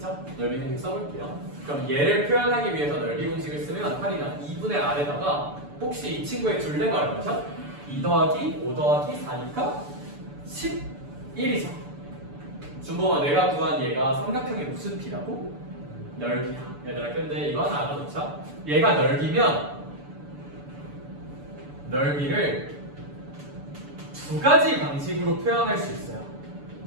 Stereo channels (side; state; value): left; late; 6.9 ms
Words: 넓이 공식 써볼게요. 그럼 얘를 표현하기 위해서 넓이 공식을 쓰면 8이나 2분의 R에다가 혹시 이 친구의 둘레가 얼마죠? 2 더하기 5 더하기 4니까 11이죠. 궁금한 내가 구한 얘가 삼각형의 무슨 P라고? 넓이야. 얘들아 근데 이거 하나 알아놓자. 얘가 넓이면 넓이를 두 가지 방식으로 표현할 수 있어요.